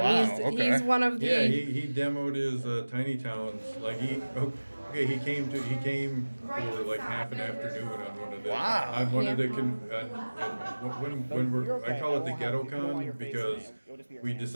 okay. He's one of the. Yeah, he demoed his Tiny Towns. Like he came for like half an afternoon on one of the Wow. on one of the Yeah. when we're I call it the Ghetto Con because we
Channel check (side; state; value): both; inverted; correlation -1.00